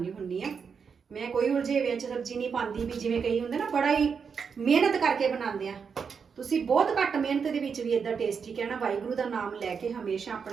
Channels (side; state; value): left; quieter; 6.1 dB